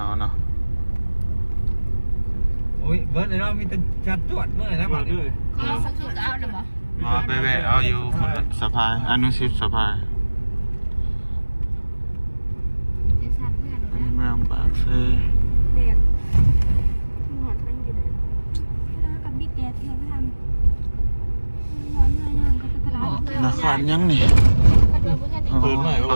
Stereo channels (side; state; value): both; inverted; correlation -1.00